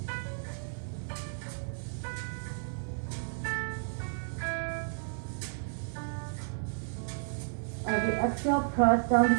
As you exhale, press down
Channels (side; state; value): left; silent; digital silence